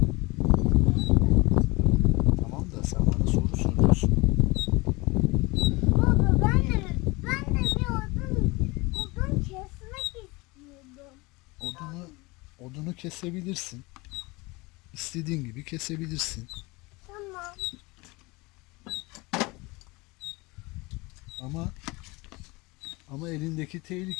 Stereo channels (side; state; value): right; quieter; 24.2 dB